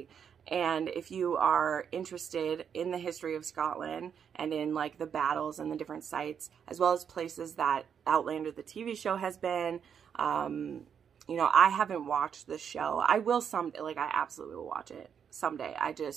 And if you are interested in the history of Scotland and in like the battles and the different sites, as well as places that Outlander, the TV show, has been, you know, I haven't watched the show. I will someday, like I absolutely will watch it someday. I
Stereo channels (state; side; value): quieter; left; 7.7 dB